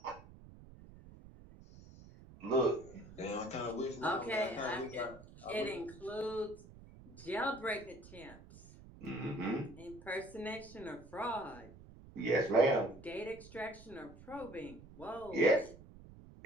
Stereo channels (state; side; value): noise; right; rumble, 18 dB below the sound